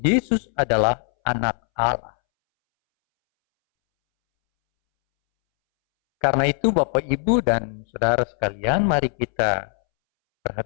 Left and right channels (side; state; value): right; silent; 65 dB below the other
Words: Yesus adalah anak Allah. Karena itu Bapak Ibu dan Saudara sekalian, mari kita